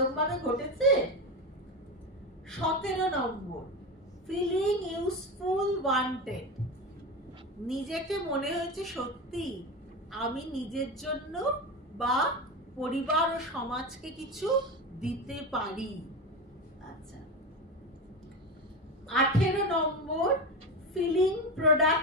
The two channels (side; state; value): both; normal; correlation 0.20